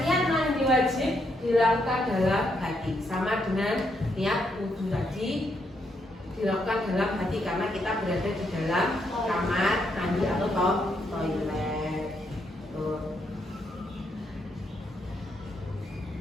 mandi wajib dilakukan dalam hati, sama dengan niat wudhu tadi dilakukan dalam hati karena kita berada di dalam kamar mandi atau toilet. Tuh.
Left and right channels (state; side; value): normal; both; correlation 0.77